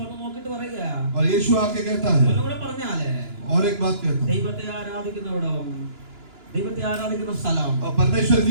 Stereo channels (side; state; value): left; late; 2.9 ms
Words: നോക്കിട്ട് പറയുക, और यीशु आके कहता है ഒന്നുകൂടെ പറഞ്ഞാലേ, और एक बात कहता है ദൈവത്തെ ആരാധിക്കുന്നവിടം, ദൈവത്തെ ആരാധിക്കുന്ന സ്ഥലം और परमेश्वर